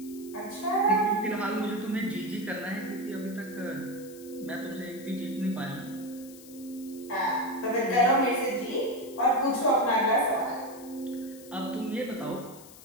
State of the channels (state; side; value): noise; left; hiss, 19 dB below the sound